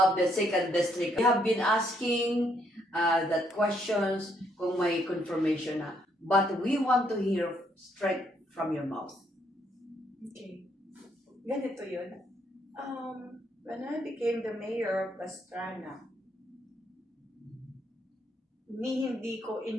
the 2nd District? We have been asking that questions kung may confirmation na. But we want to hear straight from your mouth. Okay. Ganito yun. When I became the mayor of Pastrana, hindi ko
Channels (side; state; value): both; normal; correlation 0.72